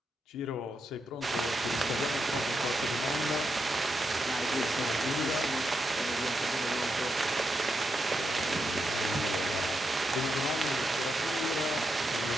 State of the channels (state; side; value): normal; both; correlation 0.84